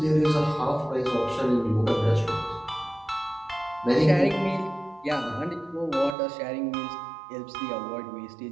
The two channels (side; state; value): left; drops out; at 6.2 s